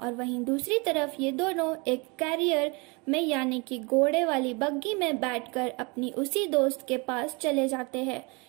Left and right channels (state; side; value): quieter; left; 29.1 dB